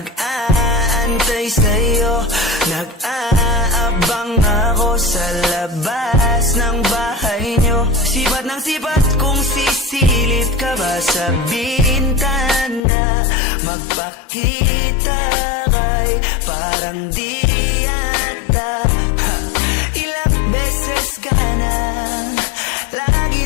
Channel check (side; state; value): right; drops out; at 12.8 s